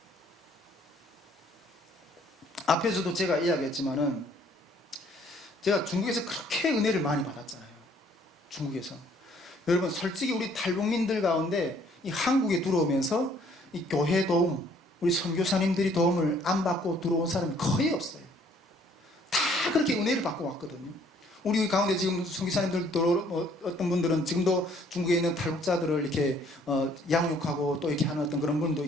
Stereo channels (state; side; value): normal; both; correlation 0.61